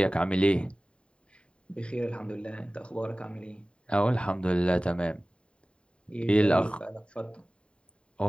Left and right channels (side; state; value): right; late; 0.055 ms